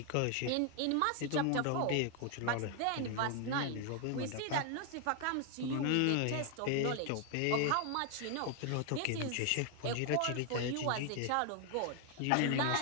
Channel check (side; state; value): both; different; correlation 0.00